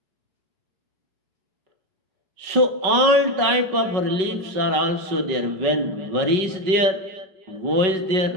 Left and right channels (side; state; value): left; late; 5.3 ms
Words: So all type of reliefs are also there. When worry is there, woe is there,